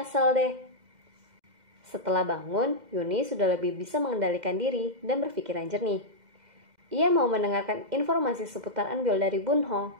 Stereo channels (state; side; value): late; left; 2.1 ms